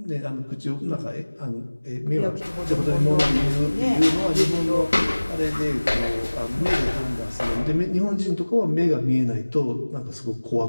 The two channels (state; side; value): inverted; both; correlation -1.00